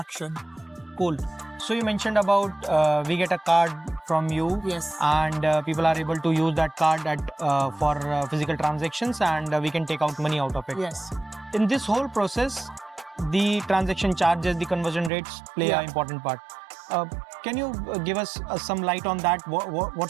Cool. So you mentioned about we get a card from you, Yes. and people are able to use that card for physical transactions, and we can take out money out of it. Yes. In this whole process, the transaction charges, the conversion rates play Yeah. an important part. Can you give us some light on that?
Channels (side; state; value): left; drops out; at 15.1 s